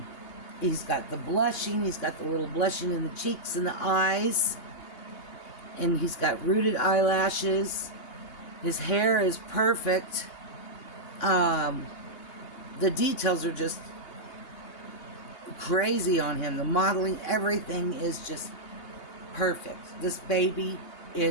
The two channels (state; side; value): late; right; 2.8 ms